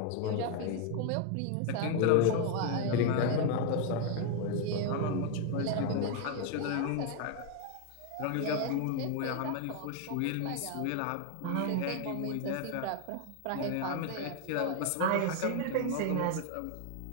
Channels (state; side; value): different; both; correlation 0.01